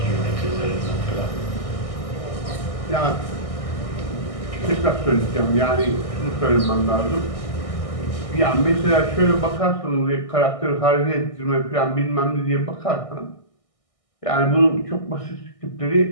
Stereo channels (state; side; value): late; right; 1.6 ms